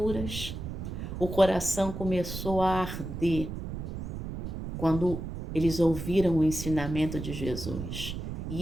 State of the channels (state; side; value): noise; right; rumble, 6 dB below the sound